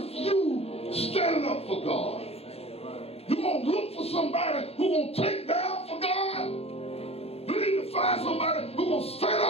you standing up for God? You gonna look for somebody who gonna take down for God? You need to find somebody who gonna stand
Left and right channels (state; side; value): late; right; 0.29 ms